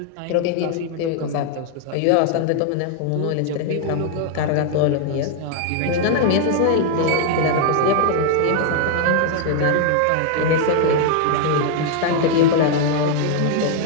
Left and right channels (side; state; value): both; different; correlation 0.00